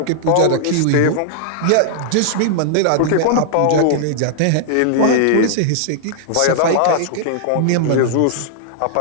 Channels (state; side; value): different; both; correlation -0.01